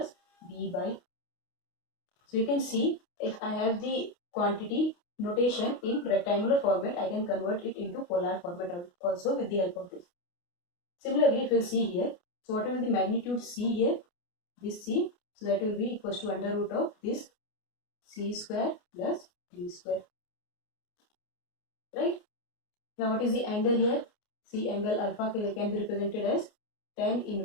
B by. So you can see if I have the quantity notation in rectangular format, I can convert it into polar format also with the help of this. Similarly, if you see here, so whatever the magnitude c here, this c, so that will be equals to under root of this c square plus d square, right? Now what is the angle here? See, angle alpha can be represented as tan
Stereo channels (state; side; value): late; right; 29 ms